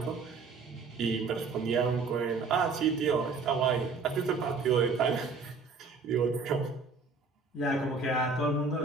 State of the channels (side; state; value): left; quieter; 4.5 dB